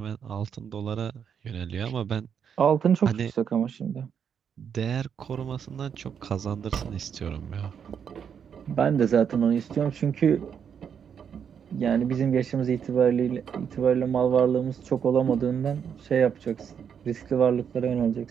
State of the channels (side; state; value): left; quieter; 7.6 dB